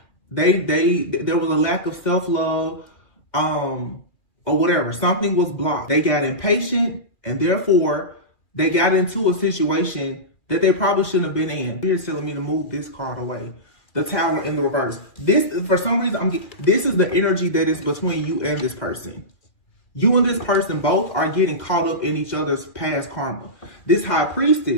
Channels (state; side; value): late; right; 2.4 ms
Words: There was a lack of self-love, or whatever. Something was blocked. They got impatient, and therefore they got into a situation that they probably shouldn't have been in. Here's telling me to move this card away. The Tower in the reverse. This, for some reason, this is the energy that is between you and this person. You and this person both are getting caught up in each other's past karma. This High